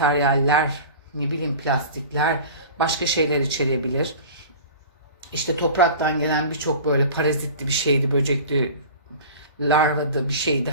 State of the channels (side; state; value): both; inverted; correlation -0.38